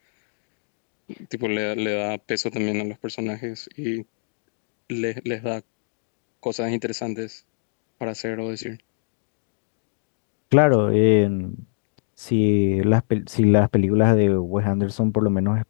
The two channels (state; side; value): silent; right; digital silence